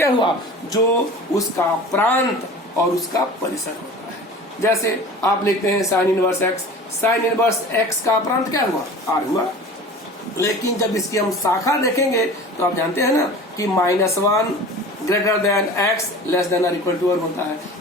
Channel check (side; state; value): both; normal; correlation 0.39